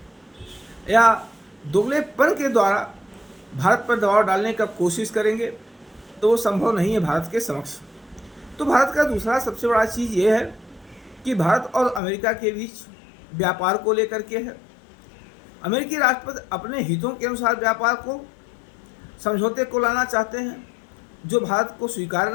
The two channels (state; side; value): drops out; right; at 12.0 s